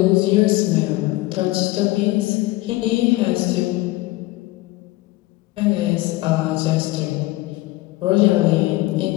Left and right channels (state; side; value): quieter; right; 19.3 dB